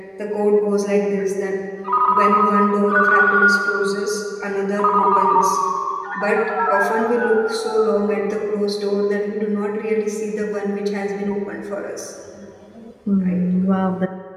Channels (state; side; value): identical; both; correlation 1.00